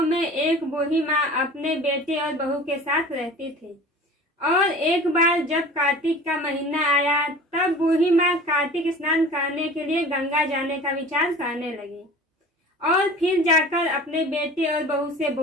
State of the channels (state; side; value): normal; both; correlation 0.40